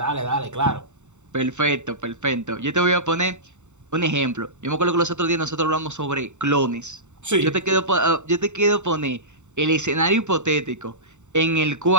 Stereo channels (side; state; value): left; late; 0.84 ms